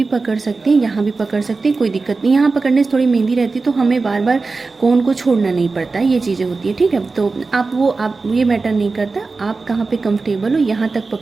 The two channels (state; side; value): quieter; left; 4.0 dB